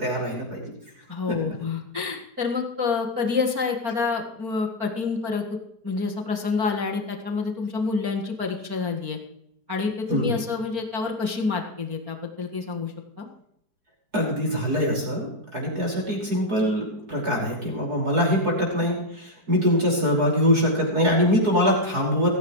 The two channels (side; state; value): left; late; 4.7 ms